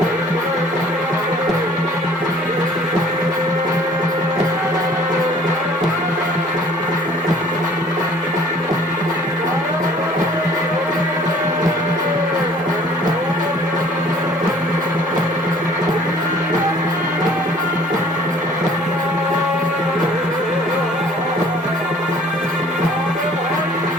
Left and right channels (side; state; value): both; normal; correlation 0.53